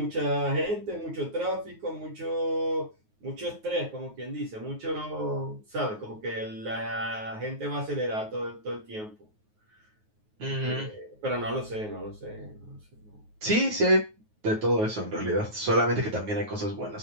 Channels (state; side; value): late; left; 9.4 ms